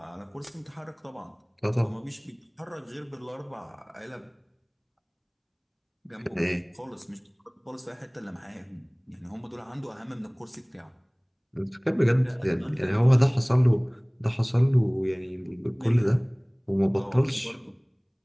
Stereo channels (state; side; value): identical; both; correlation 1.00